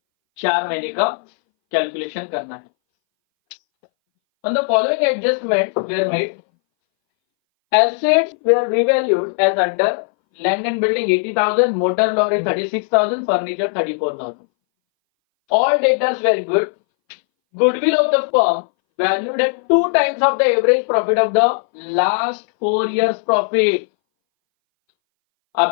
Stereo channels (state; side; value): silent; right; 62 dB below the other